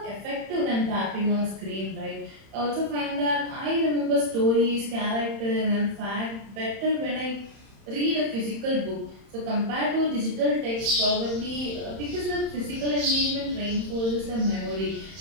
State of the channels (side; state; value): left; late; 31 ms